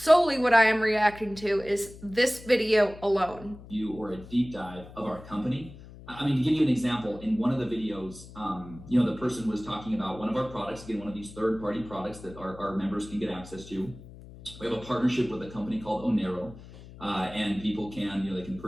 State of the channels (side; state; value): left; noise; hum, 17 dB below the sound